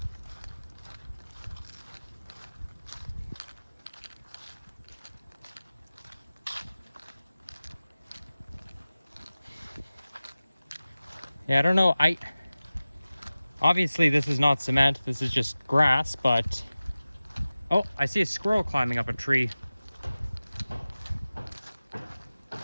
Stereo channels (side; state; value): both; inverted; correlation -0.97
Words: Yeah, I don't know. Obviously this is not cement. This is just grass, but oh, I see a squirrel climbing up a tree.